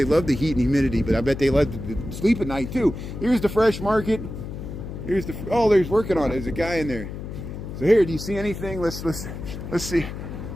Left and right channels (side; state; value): left; noise; hum, 9 dB below the sound